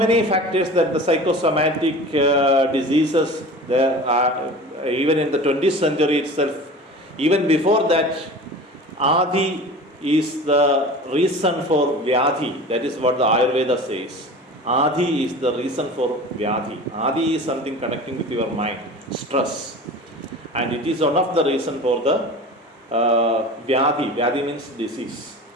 factors that the psychosomatic diseases there are even in the 20th century itself. Even before that, Adi is the reason for Vyadhi. That is what the Ayurveda says. Adi is the reason for Vyadhi. Adi is something connecting with your mind, stress. And it is one of the reason for the Vyadhi. Vyadhi means disease.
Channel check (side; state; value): both; normal; correlation 0.37